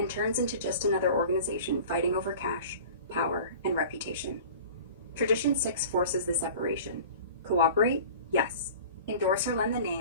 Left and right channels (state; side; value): inverted; both; correlation -0.41